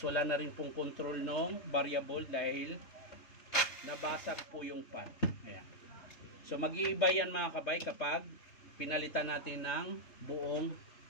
wala na rin pong control ng variable dahil nabasag po yung pan. Ayan. So mag-iiba yan mga kabay kapag pinalitan natin ng buong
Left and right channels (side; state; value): right; late; 3.3 ms